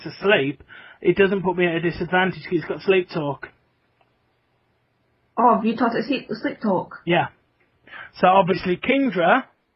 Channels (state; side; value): identical; both; correlation 1.00